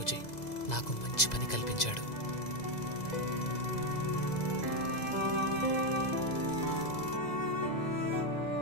నాకు మంచి పని కల్పించాడు.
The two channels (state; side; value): late; right; 2.0 ms